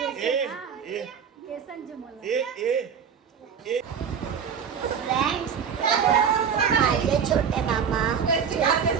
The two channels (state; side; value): quieter; left; 7.1 dB